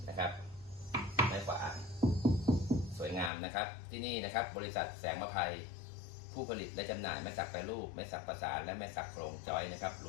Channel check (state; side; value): drops out; right; at 3.3 s